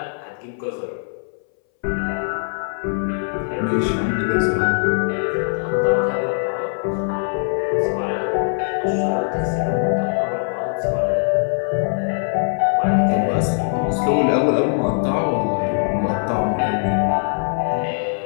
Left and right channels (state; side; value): silent; right; 62 dB below the other